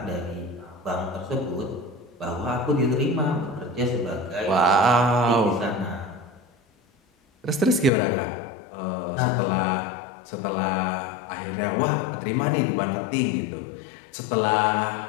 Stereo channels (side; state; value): right; drops out; at 7.9 s